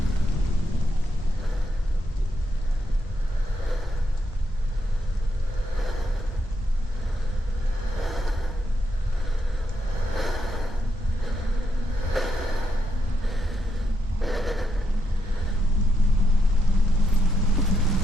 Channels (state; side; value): normal; both; correlation 0.80